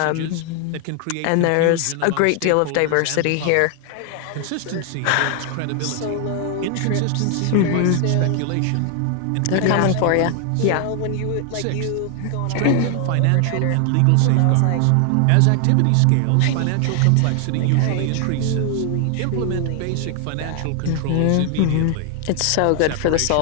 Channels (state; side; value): different; both; correlation 0.00